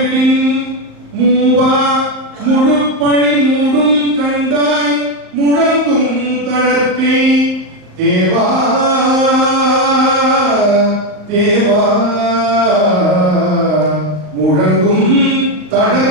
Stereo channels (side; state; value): left; late; 38 ms